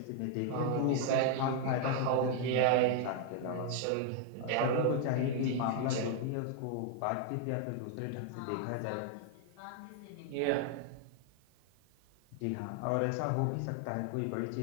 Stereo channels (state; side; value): different; both; correlation 0.00